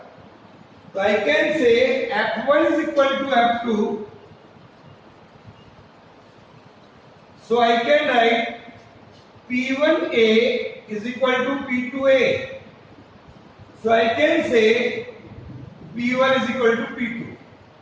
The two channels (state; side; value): identical; both; correlation 1.00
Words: So I can say F1 is equal to F2. So I can write P1A is equal to P2A. So I can say P1 is equal to P2.